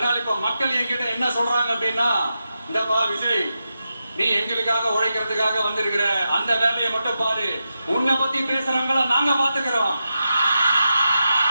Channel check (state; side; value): inverted; both; correlation -0.88